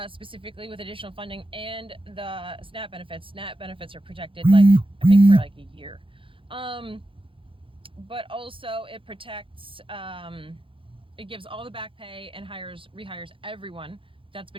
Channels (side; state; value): left; late; 0.25 ms